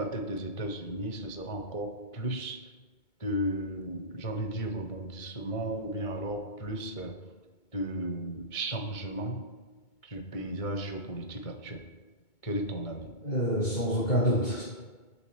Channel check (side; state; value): right; late; 2.2 ms